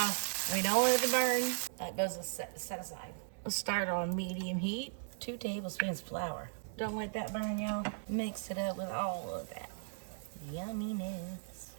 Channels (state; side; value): silent; left; digital silence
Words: We don't want it to burn. That goes set aside. Let's start on medium heat. 2 tablespoons flour. Don't let that burn, y'all. Mix it up with all of that yumminess.